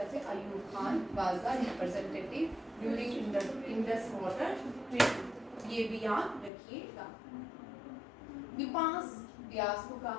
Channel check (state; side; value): drops out; right; at 6.5 s